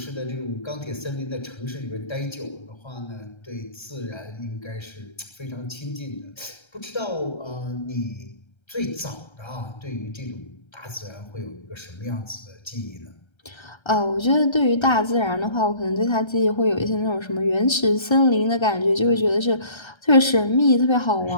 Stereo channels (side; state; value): right; late; 1.3 ms